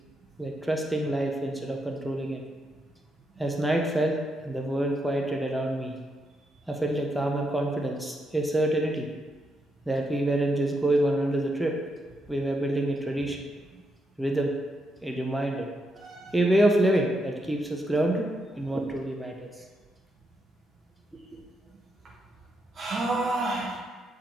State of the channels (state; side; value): normal; both; correlation 0.81